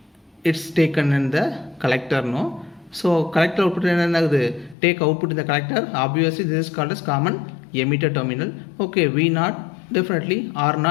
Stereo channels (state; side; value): drops out; right; at 4.8 s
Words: it's taken in the collector, no. So collector output take output in the collector, obviously this is called as common emitter terminal. Okay, V0 definitely